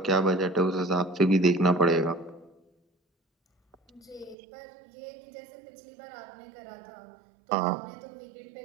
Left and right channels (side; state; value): left; drops out; at 4.4 s